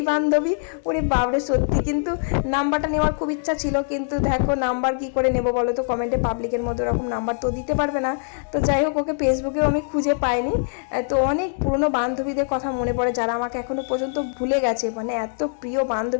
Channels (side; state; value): right; silent; digital silence